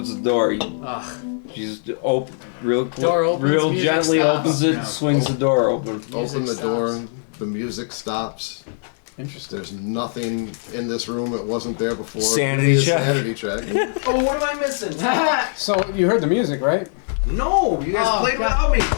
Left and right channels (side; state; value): right; silent; 65 dB below the other